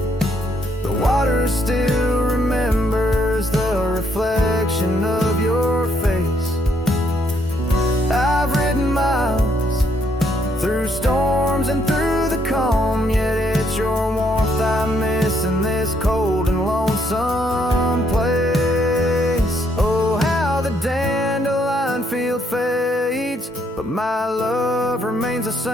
the water still remembers the reflection of your face. I've ridden miles through storms and through the calm, yet it's your warmth I miss in this cold and lonesome place. Oh, how the dandelion field fades, but my love remains the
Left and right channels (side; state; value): both; normal; correlation 0.71